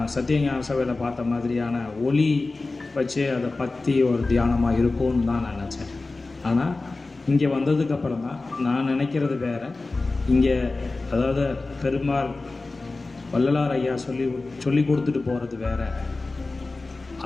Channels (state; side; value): quieter; right; 3.4 dB